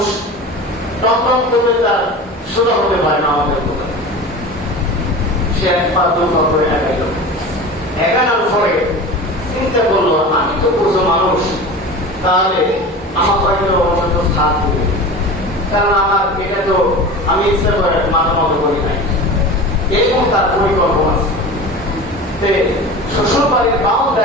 টম করে তার সোজা হতে পারে না আমাদের কোথায়। সে এক পা দু পা করে এগাইল। এগানোর পরে চিন্তা করলো, আমি তো পুজো মানুষ, তাহলে আমার হয়তো অন্তত সাথ দেবে, কারণ আমার এটা তো আমি ইচ্ছা করে মাথা মতো করি নাই, এরকম তার পরিকল্পনা আছে। শ্বশুর বাড়ির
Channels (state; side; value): normal; both; correlation 0.33